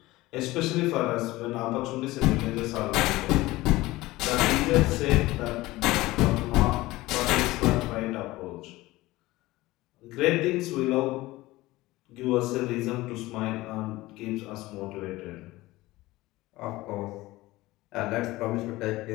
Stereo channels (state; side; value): quieter; right; 18.9 dB